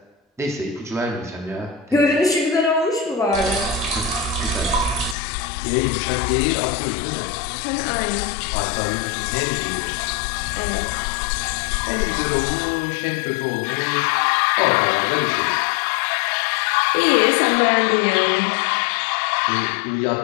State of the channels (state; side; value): drops out; right; at 5.2 s